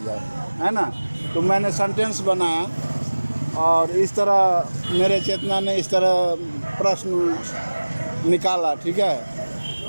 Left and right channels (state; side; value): inverted; both; correlation -1.00